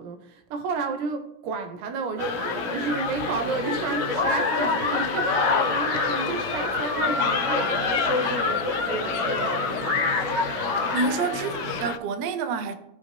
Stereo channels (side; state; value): left; late; 17 ms